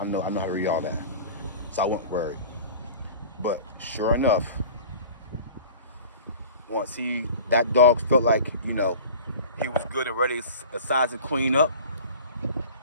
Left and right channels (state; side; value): inverted; both; correlation -0.40